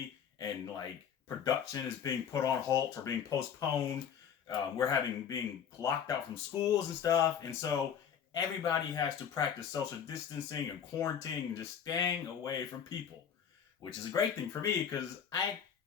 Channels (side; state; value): right; quieter; 8.0 dB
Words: and production is being put on halt or being postponed. We're being locked out from schools and stuff. And so everybody has to practice social distancing and quarantining and just staying away from people, which is a great thing for me because I